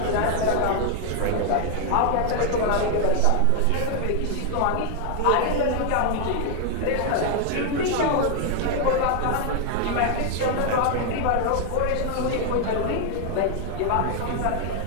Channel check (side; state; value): both; different; correlation 0.00